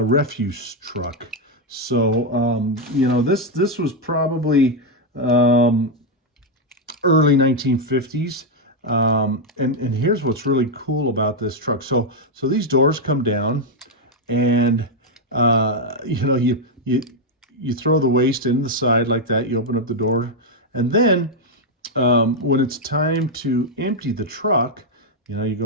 truck. So, you know, this was probably early 1950s. And here's what's really cool about this truck. So these doors come down, and you know, you throw the waste in the side like that. You open up the door, and then when it's time to empty the truck, you know, you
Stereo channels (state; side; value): normal; both; correlation 0.01